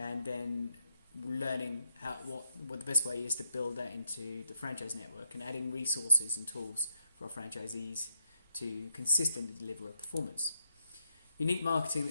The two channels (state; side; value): inverted; both; correlation -0.82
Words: then learning what the best way is to build that into the franchise network and adding resources and tools for our franchisees to consistently deliver a performance. Unique marketing